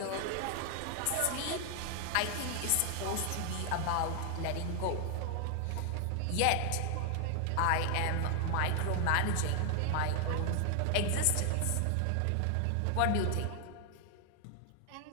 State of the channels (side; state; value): both; different; correlation 0.00